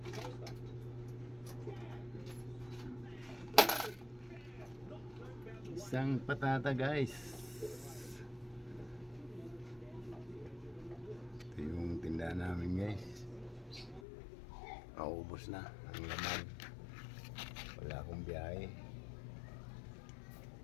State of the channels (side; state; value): right; drops out; at 14.0 s